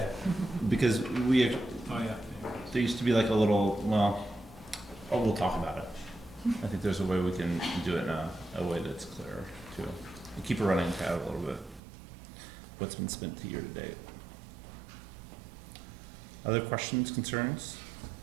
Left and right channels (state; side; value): drops out; left; at 11.8 s